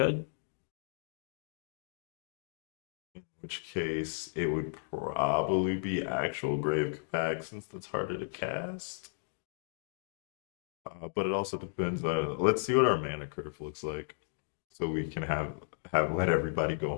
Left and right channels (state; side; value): silent; right; digital silence